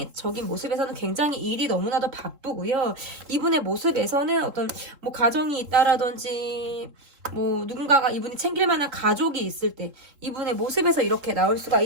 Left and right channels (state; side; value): late; left; 3.7 ms